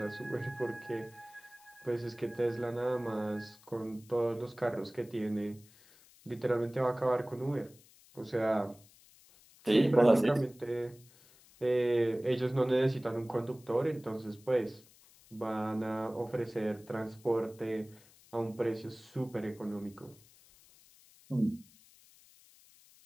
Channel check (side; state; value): left; noise; hiss, 26 dB below the sound